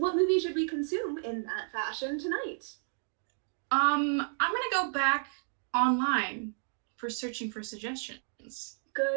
movie should we consume in that fashion tonight? I'm gonna go back online for searching for suggestions.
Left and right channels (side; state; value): left; silent; digital silence